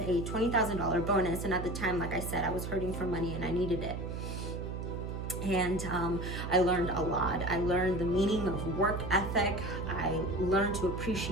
a $20,000 bonus. And at the time, like I said, I was hurting for money and I needed it. And I learned a lot. I learned the meaning of work ethic. I learned to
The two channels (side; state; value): right; noise; hum, 5 dB below the sound